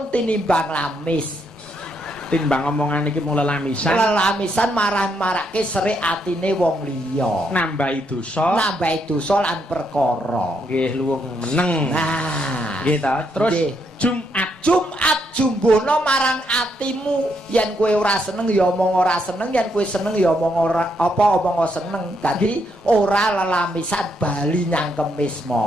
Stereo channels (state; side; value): normal; both; correlation 0.76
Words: tinimbang lamis. Timbang omongan iki mung lelamisan. Lelamisan marah-marake serik atine wong liya. Nambahi dosa lan perkara. Nggih, luwung meneng. Nah, nggih ta. Terus Jumat jumbono marang atimu. Yen kowe ora seneng ya omong ora seneng, yen kowe seneng ya omong ora omong seneng. Dadi ora lelamisan bali nyang Kemis